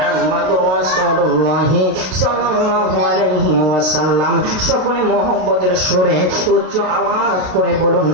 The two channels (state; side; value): late; left; 33 ms